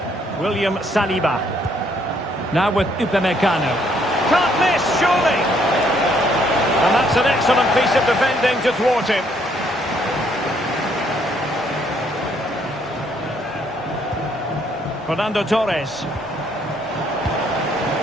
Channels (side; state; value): both; normal; correlation 0.68